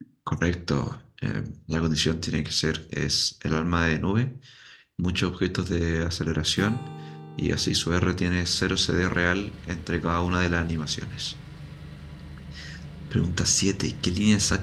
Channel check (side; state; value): both; identical; correlation 1.00